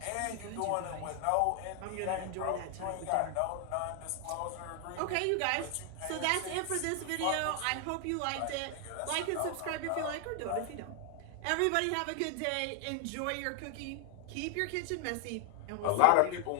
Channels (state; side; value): different; both; correlation 0.00